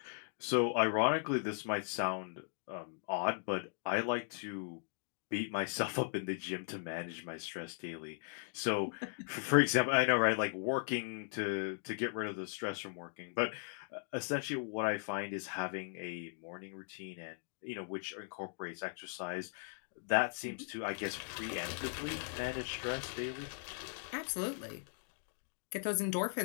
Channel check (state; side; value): silent; right; digital silence